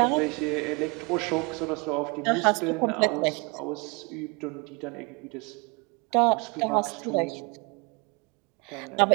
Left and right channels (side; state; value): left; quieter; 29.6 dB